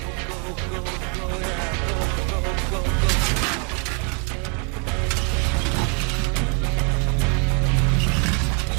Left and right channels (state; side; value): quieter; left; 36.7 dB